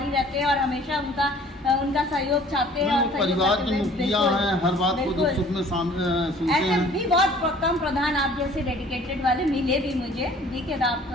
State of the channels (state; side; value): normal; both; correlation 0.52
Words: रहते हैं और हमेशा उनका सहयोग चाहते हैं। और परिवार के मुखिया हैं, हर बात को दुख सुख में सुनते ऐसे हैं। भी बहुत कम प्रधान आप जैसे डेडिकेटेड वाले मिले भी मुझे। देखिए